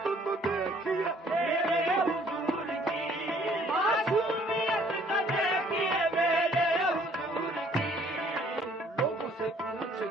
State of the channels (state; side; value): normal; both; correlation 0.60